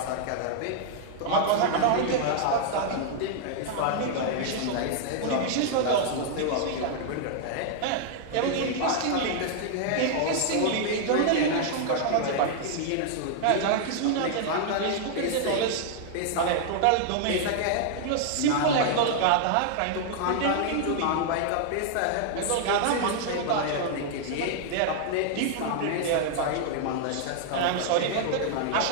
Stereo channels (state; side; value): different; both; correlation -0.01